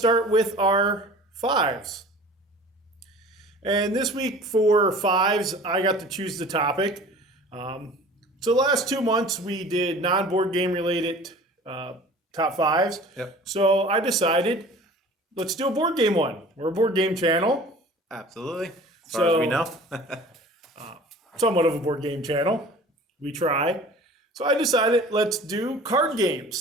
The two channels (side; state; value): both; normal; correlation 0.44